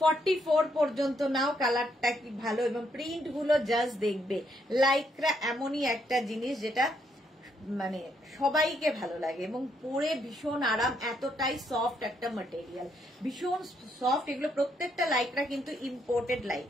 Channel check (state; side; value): normal; both; correlation 0.75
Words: 44 পর্যন্ত নাও। কালারটা কি ভালো, এবং প্রিন্ট গুলো জাস্ট দেখবে। লাইক্রা এমনই একটা জিনিস যেটা মানে সবাইকে ভালো লাগে এবং পরে ভীষণ আরাম। এতটাই সফট একটা ম্যাটেরিয়াল, ভীষণ সফট। এগুলো প্রত্যেকটা লাইক্রা কিন্তু imported